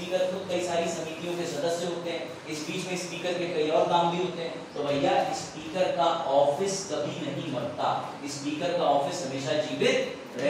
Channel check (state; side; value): identical; both; correlation 1.00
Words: खुद कई सारी समितियों के सदस्य होते हैं, इस बीच में स्पीकर के कई और काम भी होते हैं। तो भैया स्पीकर का ऑफिस कभी नहीं मरता, स्पीकर का ऑफिस हमेशा जीवित